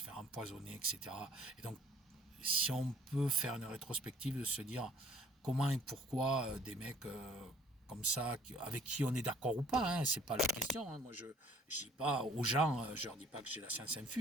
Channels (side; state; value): both; normal; correlation 0.57